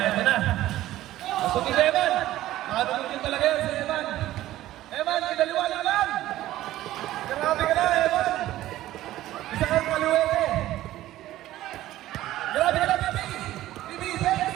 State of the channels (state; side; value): quieter; left; 14.8 dB